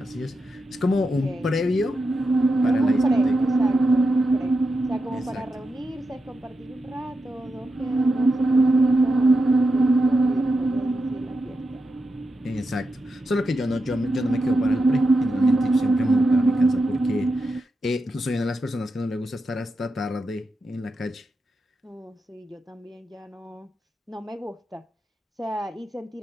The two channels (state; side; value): normal; both; correlation 0.87